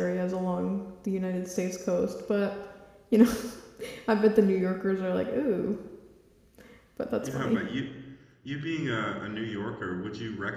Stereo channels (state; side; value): identical; both; correlation 1.00